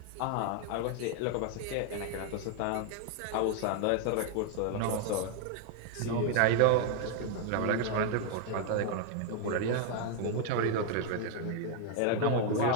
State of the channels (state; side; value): different; both; correlation 0.00